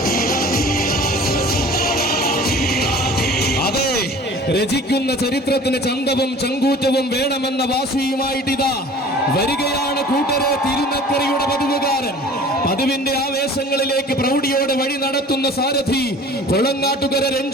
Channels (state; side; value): normal; both; correlation 0.45